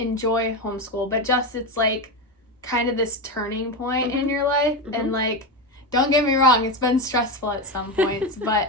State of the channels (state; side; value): normal; both; correlation 0.15